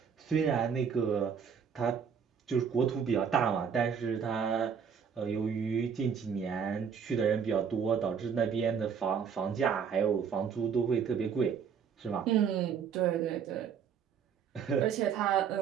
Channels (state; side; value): quieter; left; 7.0 dB